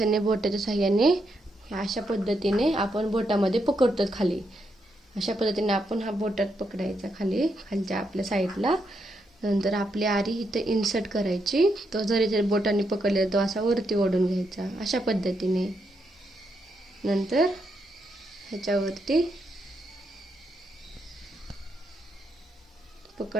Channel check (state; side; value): normal; both; correlation 0.80